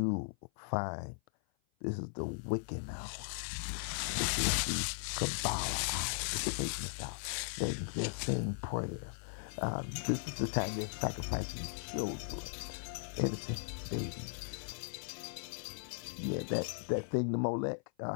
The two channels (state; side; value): silent; right; 53 dB below the other